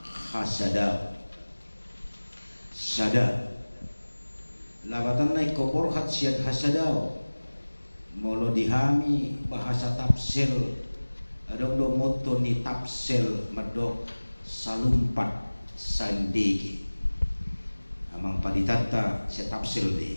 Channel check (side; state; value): both; inverted; correlation -1.00